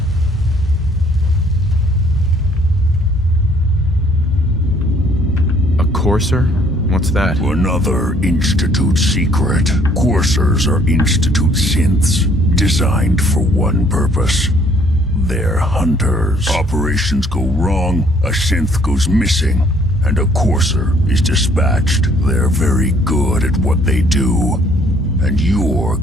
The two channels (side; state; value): both; normal; correlation 0.62